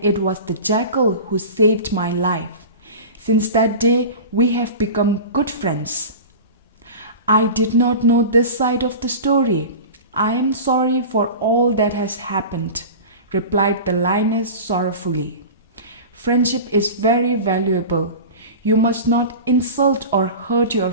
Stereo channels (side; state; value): both; inverted; correlation -0.32